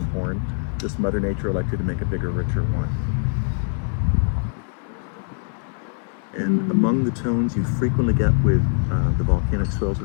horn. Just Mother Nature elected to make a bigger, richer wine. And among the tones you frequently get with the volcanic soils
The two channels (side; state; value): right; silent; 62 dB below the other